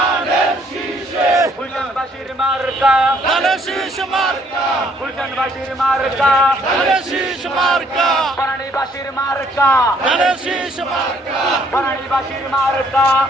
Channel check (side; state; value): both; normal; correlation 0.65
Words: শীষে গুলশানবাসীর মার্কা ধানের শীষ মার্কা গুলশানবাসীর মার্কা ধানের শীষ মার্কা বনানীবাসীর মার্কা ধানের শীষ মার্কা বনানীবাসীর মার্কা